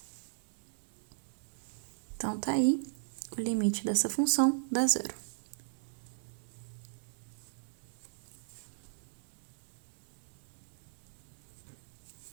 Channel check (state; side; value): silent; left; digital silence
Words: Então, tá aí o limite dessa função dá 0.